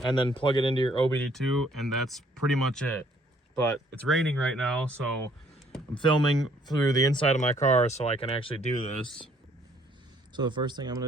and then plug it into your OBD2, and that's pretty much it. But it's raining right now, so I'm filming through the inside of my car so I can actually do this. So the first thing I'm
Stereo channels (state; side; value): normal; both; correlation 0.63